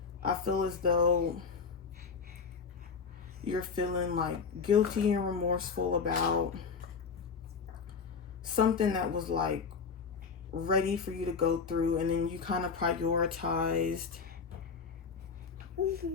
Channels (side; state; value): right; quieter; 5.5 dB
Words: I feel as though you're feeling like guilty and remorseful about something that was like ready for you to go through, and then you kind of prioritized